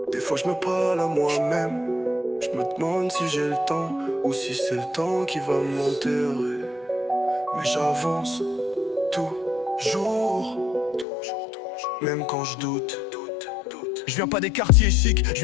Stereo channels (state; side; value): drops out; right; at 11.1 s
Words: Des fois je me parle à moi-même. Je me demande si j'ai le temps ou si c'est le temps qui va m'enterrer. Mais j'avance toujours, même quand je doute. Je viens pas des quartiers chics, je